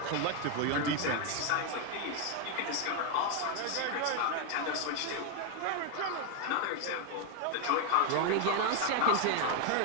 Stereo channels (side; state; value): both; different; correlation 0.01